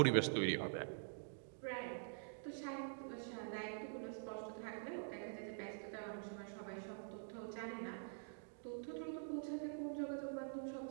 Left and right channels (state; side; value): silent; left; digital silence